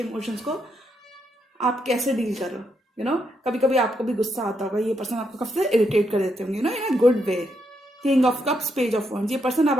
को आप कैसे डील करो। कभी कभी आपको भी गुस्सा आता होगा, ये पर्सन आपको काफी इरिटेट कर देते होंगे, in a good way. King of cups, page of wands, ये पर्सन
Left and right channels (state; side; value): normal; both; correlation 0.79